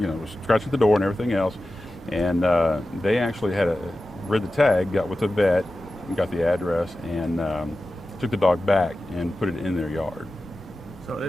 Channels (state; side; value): normal; both; correlation 0.94